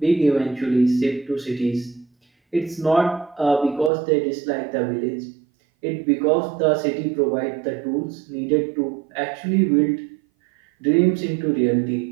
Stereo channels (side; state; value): left; drops out; at 3.9 s